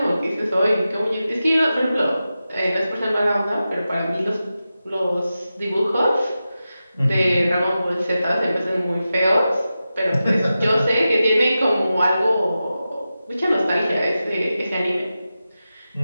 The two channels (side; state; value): both; inverted; correlation -0.92